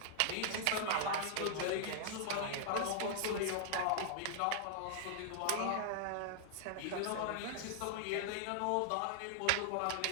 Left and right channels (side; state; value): both; different; correlation -0.01